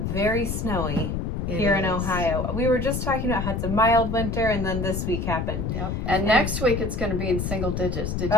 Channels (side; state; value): left; noise; rumble, 2 dB below the sound